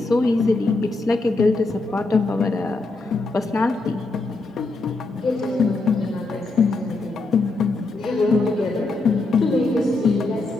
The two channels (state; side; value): quieter; right; 3.3 dB